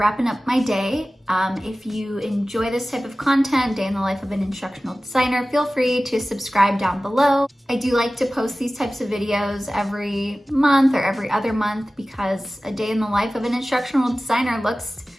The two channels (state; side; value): normal; both; correlation 0.96